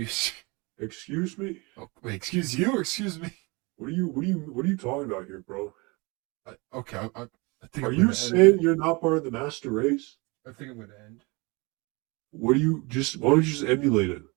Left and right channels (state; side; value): quieter; left; 27.2 dB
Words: Excuse me? Oh, wait, excuse you or excuse me? What are you talking about here, bro? Okay, I think Are I'm you gonna end it. saying you're not part of the master race? I think I'm gonna end. Why don't you just emulate it?